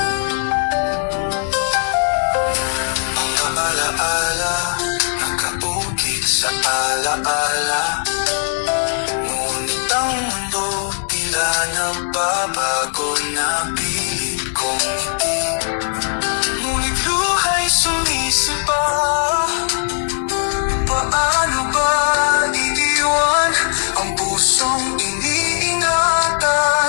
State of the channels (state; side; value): silent; right; digital silence